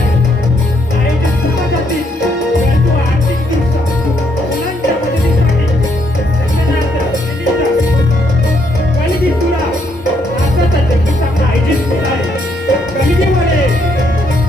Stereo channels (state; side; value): normal; both; correlation 0.73